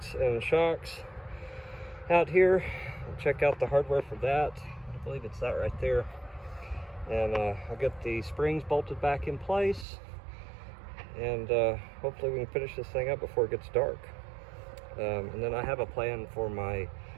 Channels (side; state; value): left; drops out; at 9.9 s